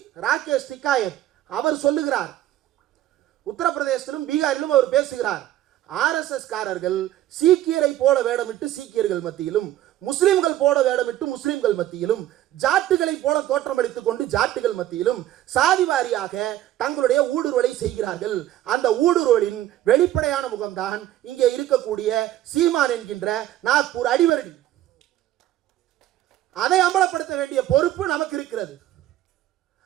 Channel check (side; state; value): left; quieter; 13.5 dB